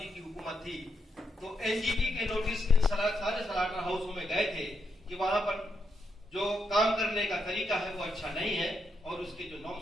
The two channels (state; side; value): normal; both; correlation 0.81